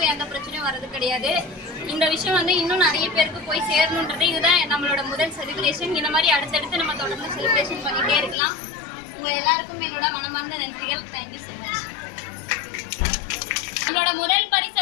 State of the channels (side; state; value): right; drops out; at 8.3 s